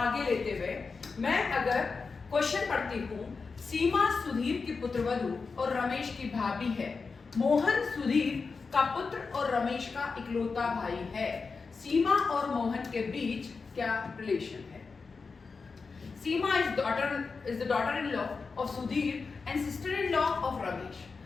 लेते हुए मैं अगर क्वेश्चन पढ़ती हूँ, सीमा सुधीर की पुत्रवधू और रमेश की भाभी है। मोहन सुधीर का पुत्र और रमेश का इकलौता भाई है। सीमा और मोहन के बीच क्या रिलेशन है? Seema is the daughter-in-law of Sudhir and sister-in-law of Ramesh.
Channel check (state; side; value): quieter; right; 4.7 dB